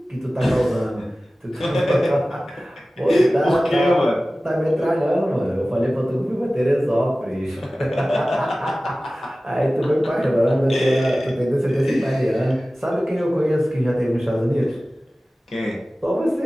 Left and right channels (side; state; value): both; normal; correlation 0.97